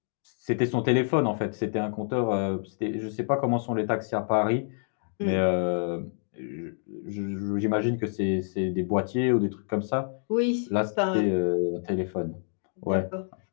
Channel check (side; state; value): right; silent; digital silence